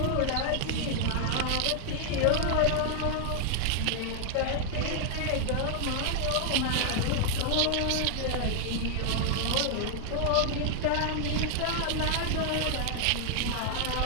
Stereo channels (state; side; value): different; both; correlation 0.00